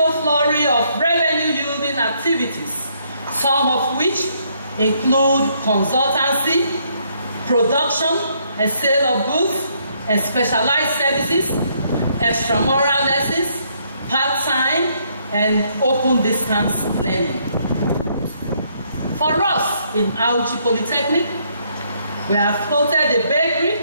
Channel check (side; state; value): both; inverted; correlation -0.70